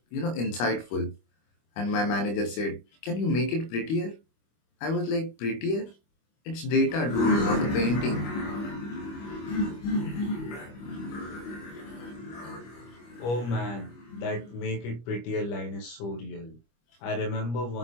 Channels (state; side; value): late; right; 25 ms